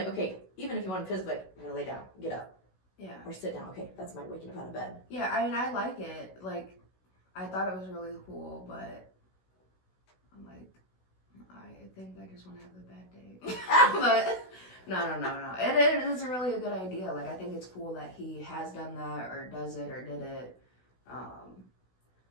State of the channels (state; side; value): late; right; 16 ms